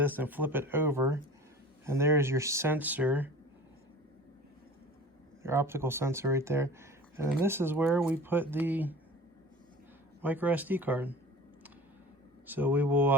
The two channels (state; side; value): normal; both; correlation 0.40